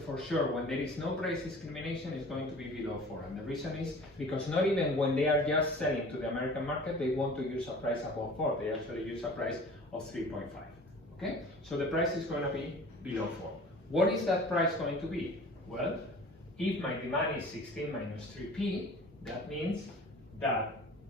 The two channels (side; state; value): both; normal; correlation 0.44